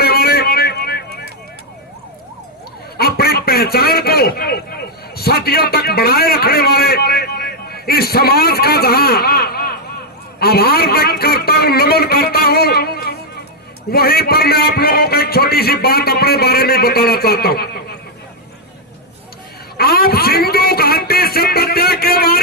वाले, अपनी पहचान को सदियों तक बनाए रखने वाले इस समाज का जहां आभार व्यक्त करता हूं, नमन करता हूं, वहीं पर मैं आप लोगों को एक छोटी सी बात अपने बारे में बताना चाहता हूं। आप सिंधु घाटी सभ्यता के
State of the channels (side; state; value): both; normal; correlation 0.00